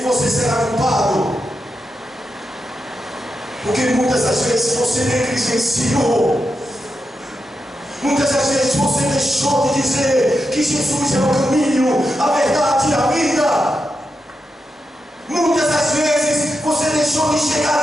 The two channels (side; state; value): both; normal; correlation 0.87